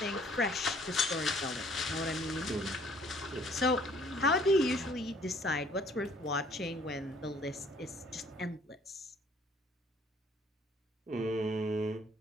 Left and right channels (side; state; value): both; normal; correlation 0.58